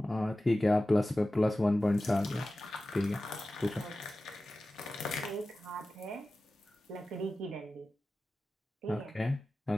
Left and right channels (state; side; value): normal; both; correlation 0.95